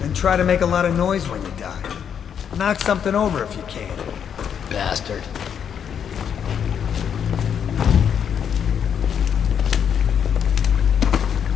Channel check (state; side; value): quieter; right; 8.1 dB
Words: Then try to make a lot of noise when you die. Knock something over if you can. Bastard.